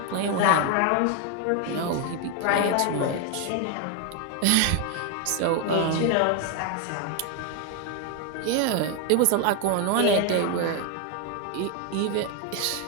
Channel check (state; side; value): different; both; correlation 0.01